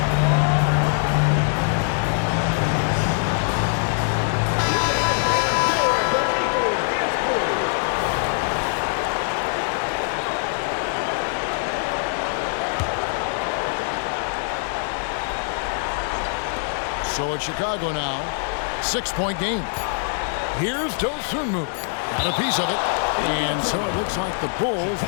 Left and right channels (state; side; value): silent; right; digital silence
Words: So it's Chicago now. 6-point game. Here's Dosunmu. Got a piece of it. And so it looks like the Bulls